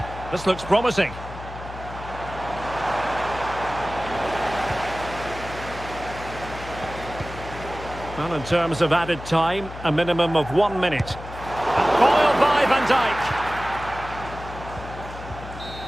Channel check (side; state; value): left; noise; hum, 12 dB below the sound